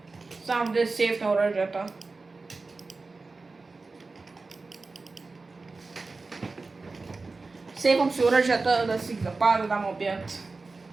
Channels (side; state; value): left; quieter; 3.8 dB